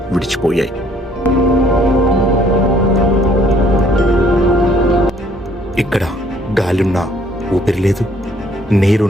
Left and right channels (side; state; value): both; normal; correlation 0.62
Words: విడిచిపోయాయి. ఇక్కడ గాలున్నా ఊపిరి లేదు,